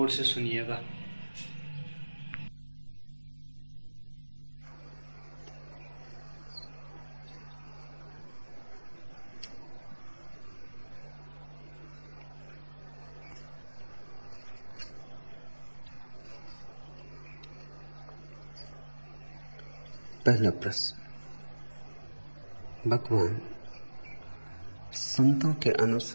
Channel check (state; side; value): inverted; both; correlation -1.00